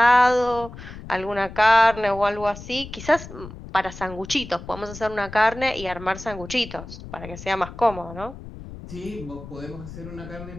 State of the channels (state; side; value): noise; left; rumble, 13 dB below the sound